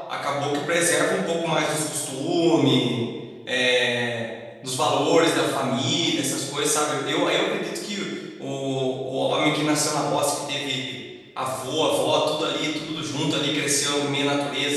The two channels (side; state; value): both; identical; correlation 1.00